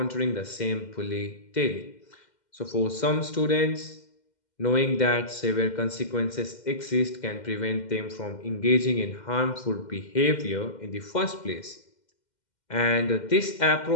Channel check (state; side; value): late; right; 2.1 ms